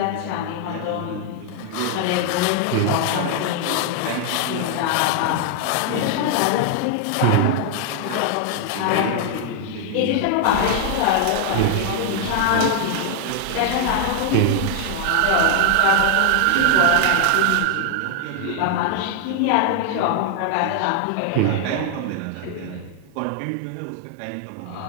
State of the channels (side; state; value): both; different; correlation 0.00